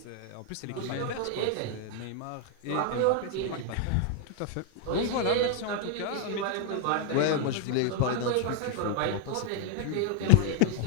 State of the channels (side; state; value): both; different; correlation 0.01